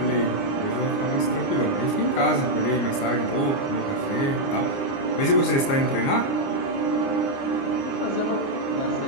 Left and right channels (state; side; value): late; right; 29 ms